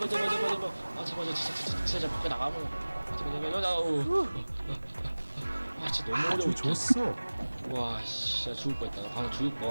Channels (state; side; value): inverted; both; correlation -1.00